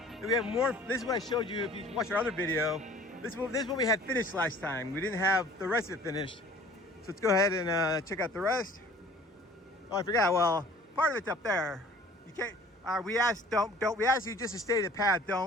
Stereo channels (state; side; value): normal; both; correlation 0.49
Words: we have more. This is what I showed you if you watched our other video. This is what we had finished last time. We didn't have the rest of it finished. So let's go ahead and check out the rest. Oh, I forgot. Well, part of it's up there. You can't. We asked you just to stay the path.